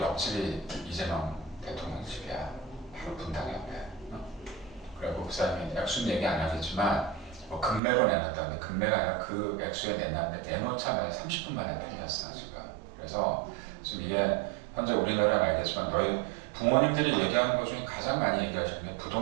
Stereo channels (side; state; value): left; drops out; at 7.8 s